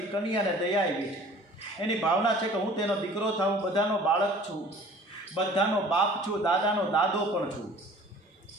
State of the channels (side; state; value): both; normal; correlation 0.48